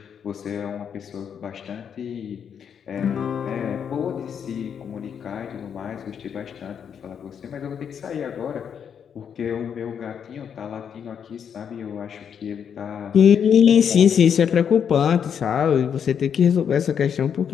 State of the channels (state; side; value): quieter; right; 7.8 dB